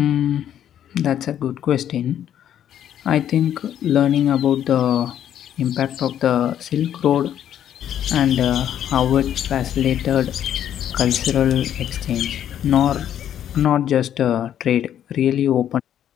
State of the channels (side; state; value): right; quieter; 10.4 dB